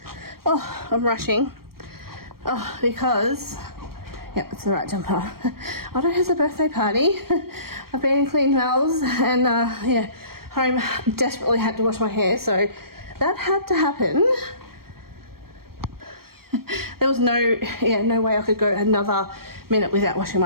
Oh, I'm rushing. Oh, because, yep, it's the right jumper. Otto has a birthday party. I've been in clean towels and, yeah, home desperately had to wash my hair, so that had to happen. There was no way I could go another minute without washing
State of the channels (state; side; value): late; left; 0.94 ms